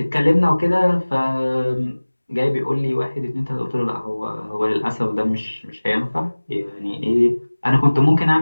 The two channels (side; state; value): both; inverted; correlation -1.00